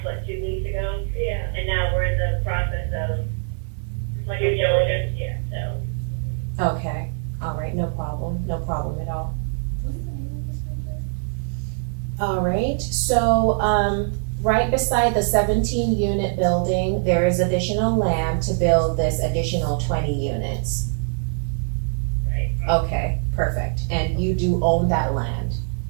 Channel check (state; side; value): silent; left; digital silence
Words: what, 2 weeks ago? Yeah. And now we're in the process of due diligence, so. okay, alright, no problem at all. Alright, so, right beside the 17 unit building, there is additional land to build this additional 20 units. Right. Okay, perfect, and you do own that land?